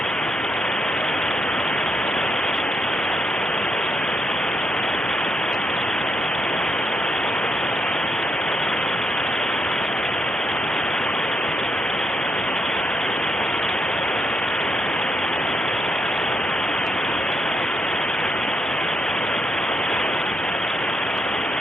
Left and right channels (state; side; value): normal; both; correlation 0.78